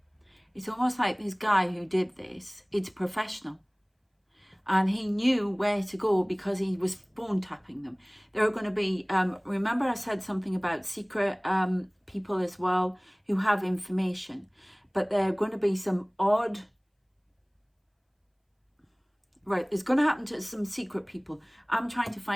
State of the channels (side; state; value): both; identical; correlation 1.00